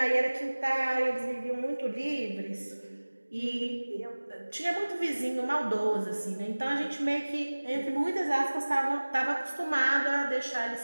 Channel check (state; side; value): inverted; both; correlation -1.00